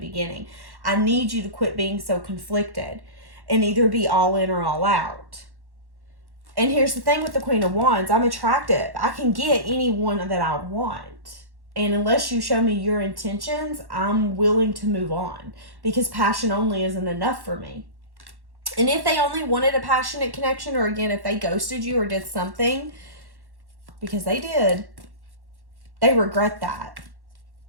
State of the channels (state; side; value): late; left; 1.1 ms